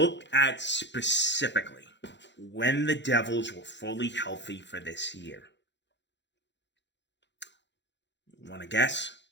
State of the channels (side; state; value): right; late; 0.52 ms